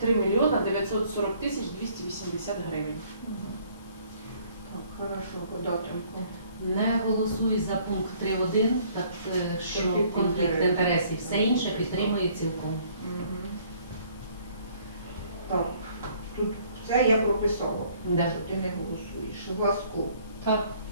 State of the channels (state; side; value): inverted; both; correlation -0.60